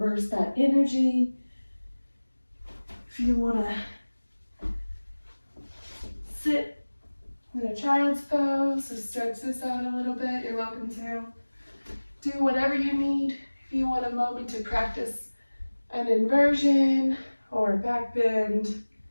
that energy, if you want to sit in a child's pose, so stretch this out a little bit, you're welcome to. Do whatever you need. If you want a moment to practice an inversion or a back bend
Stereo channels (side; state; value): both; inverted; correlation -1.00